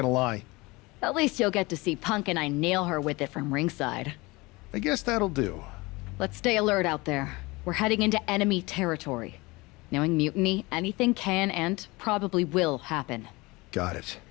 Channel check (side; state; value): right; quieter; 23.4 dB